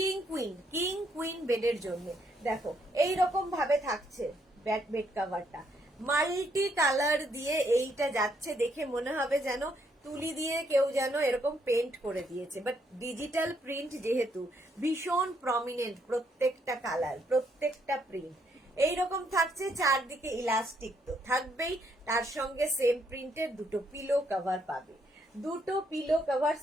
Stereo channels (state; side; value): normal; both; correlation 0.73